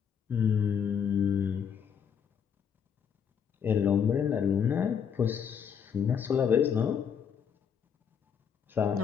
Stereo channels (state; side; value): quieter; right; 7.5 dB